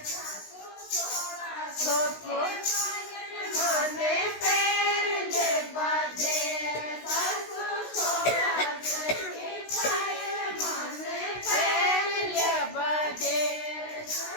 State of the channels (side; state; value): right; late; 16 ms